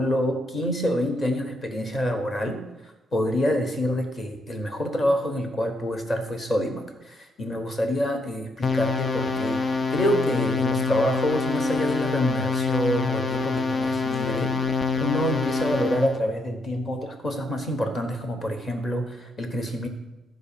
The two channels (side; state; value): both; normal; correlation 0.75